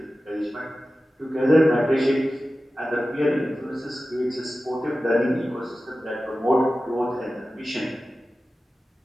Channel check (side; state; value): both; normal; correlation 0.95